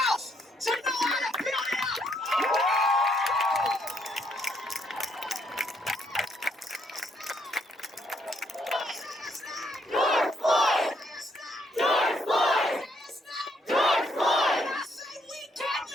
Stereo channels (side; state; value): both; normal; correlation 0.72